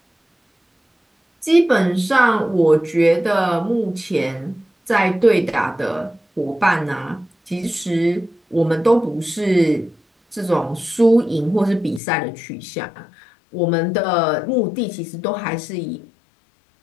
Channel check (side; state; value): right; drops out; at 12.0 s